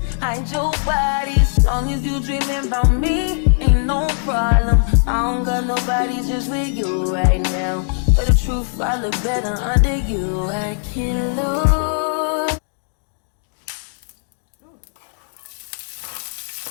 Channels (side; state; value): right; silent; digital silence